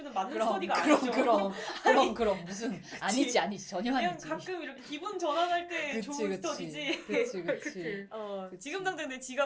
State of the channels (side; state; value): both; identical; correlation 1.00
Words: 맞는 스터디가 아니죠. 그럼 무슨 아니지 전혀 그냥 아니지. 가끔 이렇게 기분 전환할 때 좋은 스터디지. 그치. 지금 당장 내